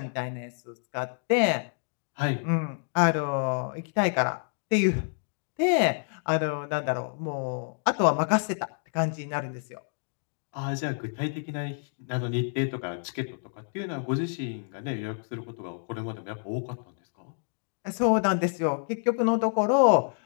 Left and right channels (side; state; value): right; silent; digital silence